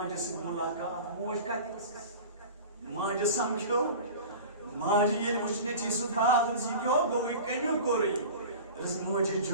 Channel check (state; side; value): inverted; both; correlation -0.36